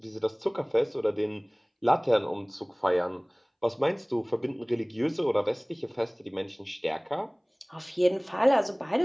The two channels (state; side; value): identical; both; correlation 1.00